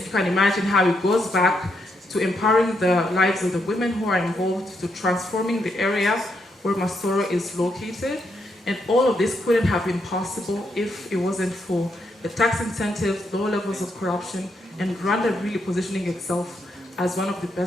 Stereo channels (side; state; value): both; normal; correlation 0.78